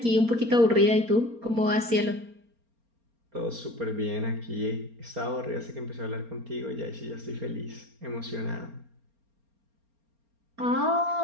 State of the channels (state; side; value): late; left; 4.3 ms